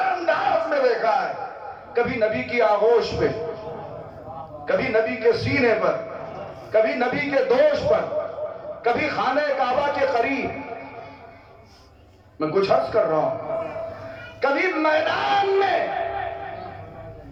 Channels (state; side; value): identical; both; correlation 1.00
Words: انداز میں دیکھا ہے. کبھی نبی کی آغوش پہ، کبھی نبی کے سینے پر، کبھی نبی کے دوش پر، کبھی خانہ کعبہ کے قریب. میں کچھ عرض کر رہا ہوں، کبھی میدان میں.